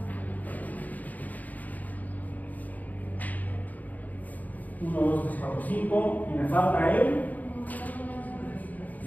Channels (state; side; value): late; right; 0.078 ms